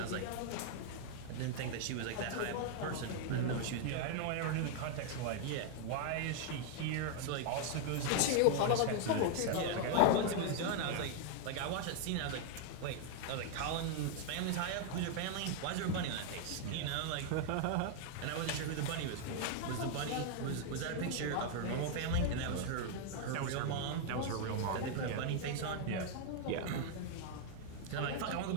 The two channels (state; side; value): different; both; correlation 0.00